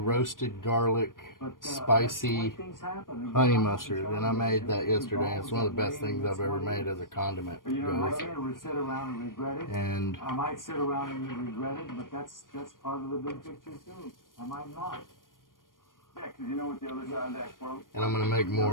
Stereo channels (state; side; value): late; right; 0.90 ms